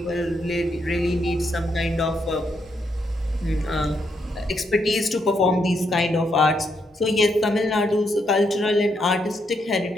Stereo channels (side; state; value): both; normal; correlation 0.78